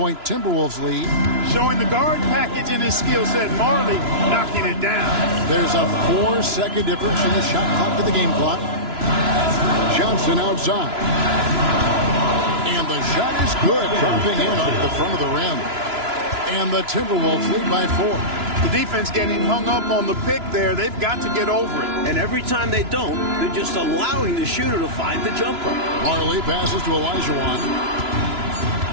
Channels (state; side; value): late; left; 2.9 ms